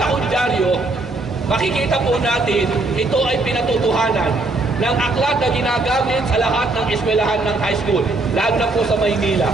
kong dyaryo, makikita po natin, ito ay pinatutuhanan ng aklat na ginagamit sa lahat ng eskwelahan ng high school, lalo na po sa Maynila,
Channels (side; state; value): left; quieter; 3.1 dB